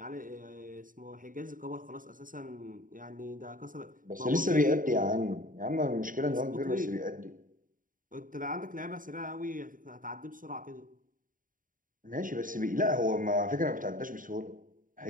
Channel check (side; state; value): left; late; 0.39 ms